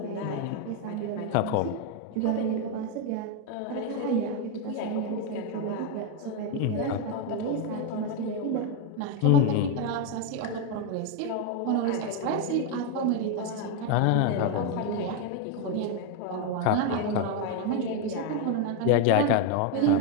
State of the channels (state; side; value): different; both; correlation 0.02